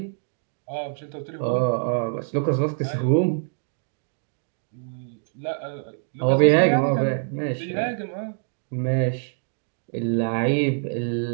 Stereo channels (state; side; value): silent; left; digital silence